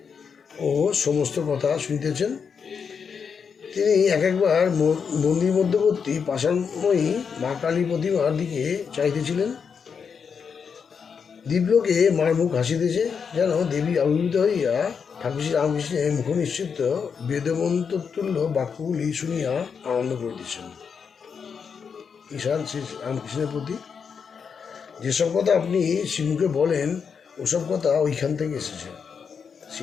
ও সমস্ত কথা শুনিতেছেন। তিনি একবার মন্দির মধ্যবর্তী পাষাণময়ী মা কালী প্রতিমার দিকে চাইতেছিলেন। দিব্যকে মার মুখ হাসিতেছে, যেন দেবী আবির্ভূত হইয়া ঠাকুর শ্রী রামকৃষ্ণের মুখ নিশ্চিত বেদমন্ত্রতুল্য বাক্যগুলি শুনিয়া আনন্দ করিতেছেন। ঈশান শ্রী রামকৃষ্ণের প্রতি যেসব কথা আপনি শ্রীমুখে বলেন, ওসব কথা ওইখান থেকে এসেছে।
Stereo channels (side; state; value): right; quieter; 6.3 dB